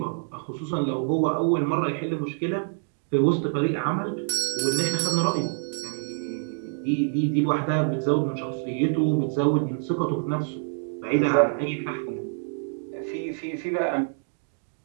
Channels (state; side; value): silent; left; digital silence